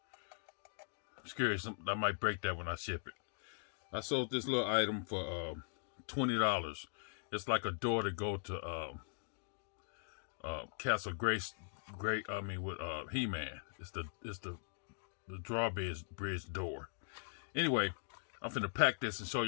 I'm scared I might break that when I ship it. I sold this little item for $20. It's like a door to go to Castle Grace. With He-Man. It's the drawbridge door. Anyway, I'm finna pack this and show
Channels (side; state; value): right; silent; digital silence